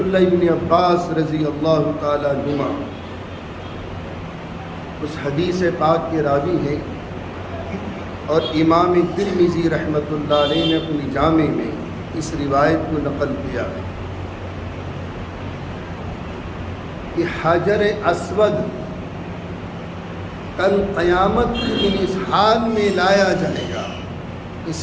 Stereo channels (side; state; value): both; identical; correlation 1.00